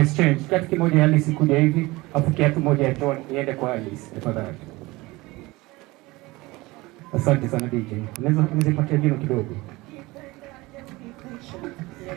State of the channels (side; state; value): left; quieter; 21.3 dB